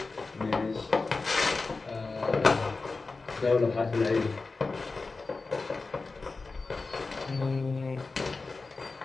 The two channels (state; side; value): quieter; right; 3.9 dB